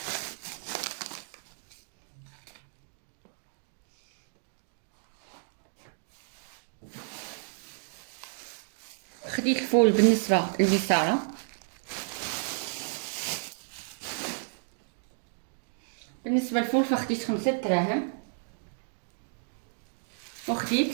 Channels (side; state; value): left; silent; digital silence